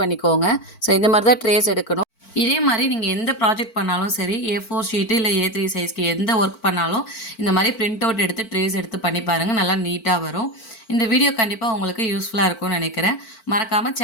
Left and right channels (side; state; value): right; late; 4.5 ms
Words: பண்ணிக்கோங்க. ஸோ இந்த மாதிரி தான் ட்ரேஸ் எடுக்கணும். இதே மாதிரி நீங்கள் எந்த ப்ராஜெக்ட் பண்ணாலும் சரி, A4 ஷீட்டு இல்லை A3 சைஸ்க்கு எந்த ஒர்க் பண்ணாலும் இந்த மாதிரி பிரிண்ட் அவுட் எடுத்து ட்ரேஸ் எடுத்து பண்ணி பாருங்கள், நல்லா நீட்டாக வரும். இந்த வீடியோ கண்டிப்பாக உங்களுக்கு யூஸ்ஃபுல்லாக இருக்கும்னு நினைக்கிறேன். மறக்காமல்